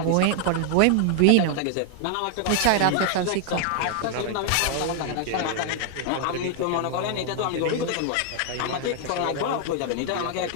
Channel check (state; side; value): different; both; correlation 0.00